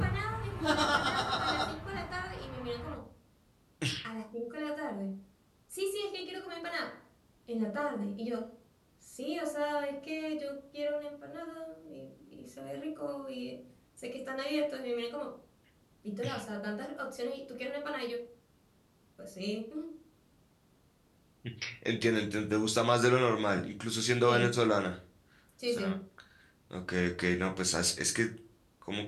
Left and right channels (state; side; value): identical; both; correlation 1.00